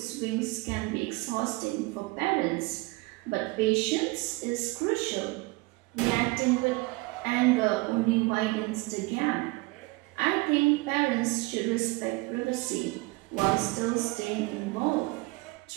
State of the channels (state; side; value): quieter; left; 23.8 dB